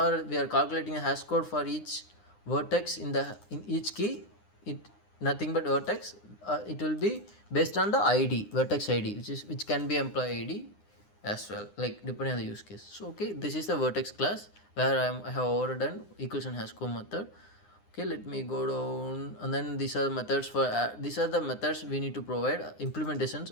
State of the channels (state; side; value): late; right; 9.8 ms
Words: we are calculating a hash code for each vertex in each key, it nothing but vertex. It will be based on the ID, vertex ID, which can be employee ID as well, like depending on the use case. So okay, this is the vertex class where I have overdone equals and hash code method. Okay, let me go down, and then these are the methods for these are the methods we need to provide